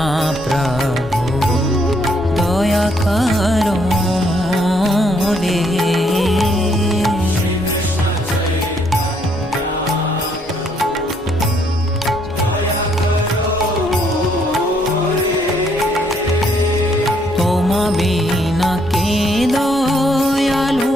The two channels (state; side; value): normal; both; correlation 0.70